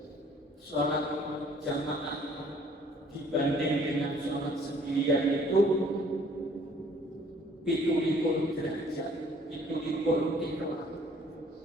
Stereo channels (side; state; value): both; normal; correlation 0.58